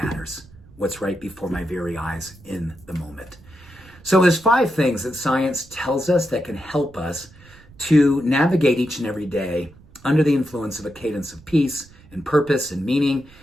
what's right before my very eyes in the moment. So there's 5 things that science tells us that can help us to navigate each and every day under the influence of a cadence of peace and purpose and meaning,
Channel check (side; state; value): right; noise; rumble, 24 dB below the sound